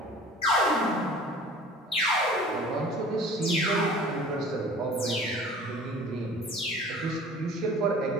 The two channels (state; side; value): normal; both; correlation 0.45